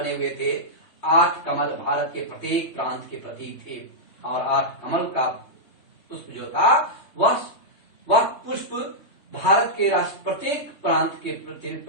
हुए थे। 8 कमल भारत के प्रत्येक प्रांत के प्रतीक थे और 8 कमल का पुष्प जो था वह पुष्प भारत के प्रत्येक प्रांत के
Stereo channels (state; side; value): late; right; 3.2 ms